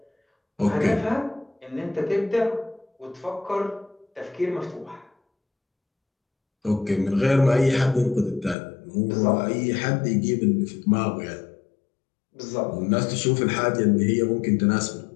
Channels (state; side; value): drops out; right; at 8.6 s